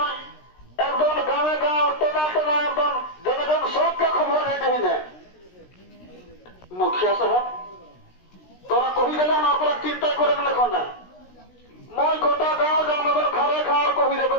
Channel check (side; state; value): right; late; 16 ms